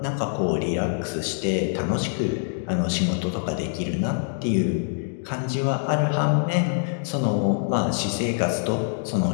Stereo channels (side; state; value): right; silent; digital silence